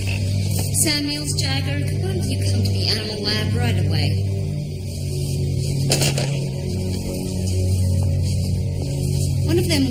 Samuels, Jagger, why don't you come to the animal lab right away? One of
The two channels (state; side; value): identical; both; correlation 1.00